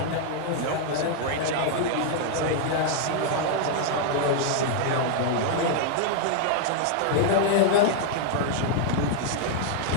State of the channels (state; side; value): different; both; correlation 0.00